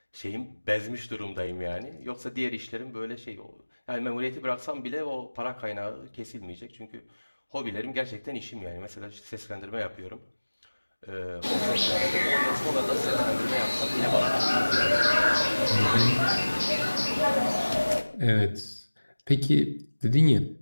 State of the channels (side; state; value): both; inverted; correlation -1.00